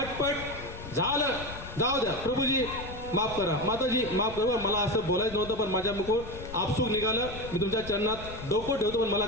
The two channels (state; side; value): noise; left; rumble, 12 dB below the sound